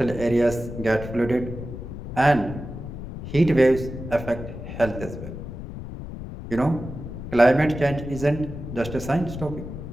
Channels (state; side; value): noise; left; rumble, 9 dB below the sound